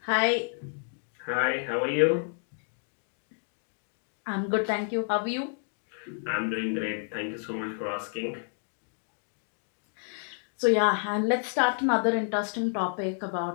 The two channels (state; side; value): silent; right; 58 dB below the other